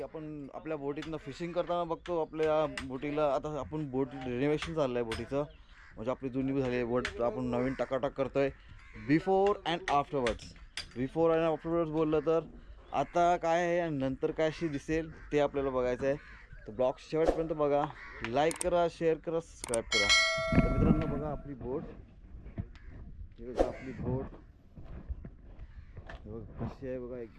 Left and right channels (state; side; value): identical; both; correlation 1.00